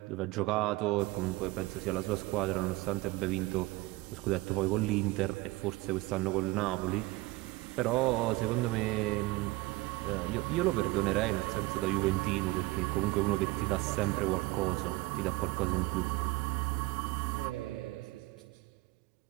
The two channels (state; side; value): quieter; left; 21.0 dB